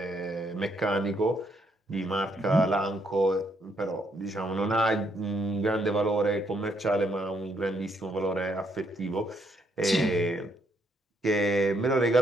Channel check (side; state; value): both; normal; correlation 0.73